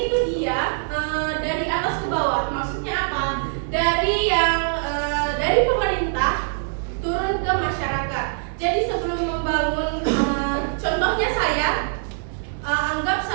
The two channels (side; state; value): left; silent; digital silence